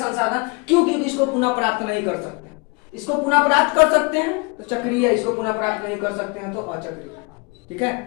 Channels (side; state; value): right; quieter; 30.1 dB